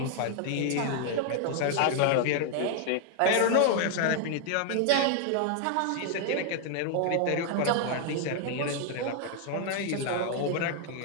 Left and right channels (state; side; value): different; both; correlation 0.00